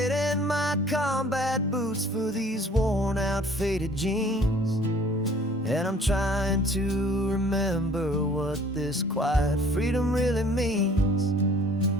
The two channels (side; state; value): both; normal; correlation 0.53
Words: in my combat boots for these worn out faded jeans, and I'm trying to remember what this quiet freedom really means.